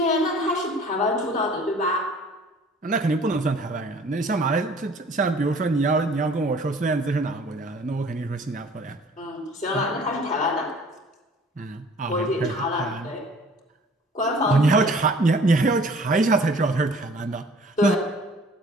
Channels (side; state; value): both; normal; correlation 0.51